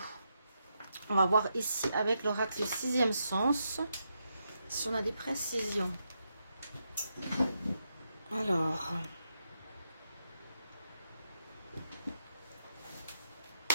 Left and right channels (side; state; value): both; inverted; correlation -0.83